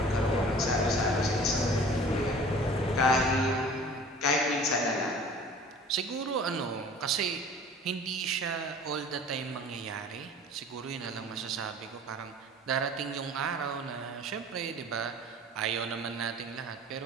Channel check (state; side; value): normal; both; correlation 0.45